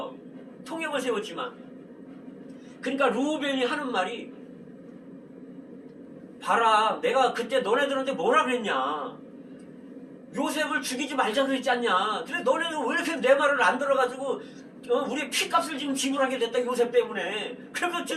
통역을 세웠지만. 그러니까 루벤이 하는 말이 봐라, 내가 그때 너네들한테 뭐라 그랬냐. 요셉을 죽이지 말자 그랬지 않냐. 근데 너네는 왜 이렇게 내 말을 안 들어가지고 우리 피값을 지금 지불하게 됐다 요셉 때문에. 그래서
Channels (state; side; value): identical; both; correlation 1.00